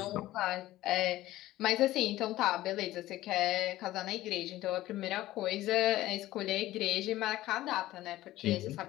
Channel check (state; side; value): quieter; right; 15.7 dB